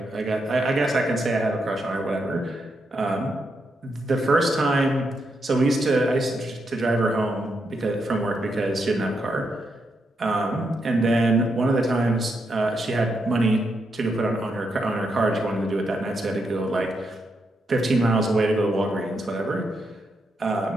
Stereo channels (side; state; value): both; normal; correlation 0.82